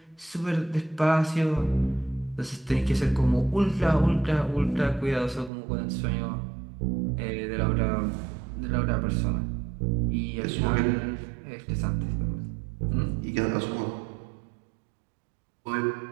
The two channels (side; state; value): left; drops out; at 5.5 s